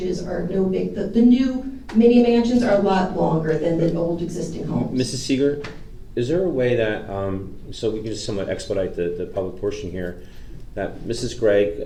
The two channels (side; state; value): both; identical; correlation 1.00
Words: are no big. The new mini mansions are a lot longer than the old existing homes. Mrs. Seeger, is there a way that, so we can just somewhat expedite the public portion here, that Mrs.